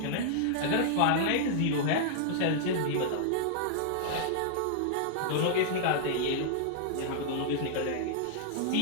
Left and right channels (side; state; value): both; different; correlation -0.01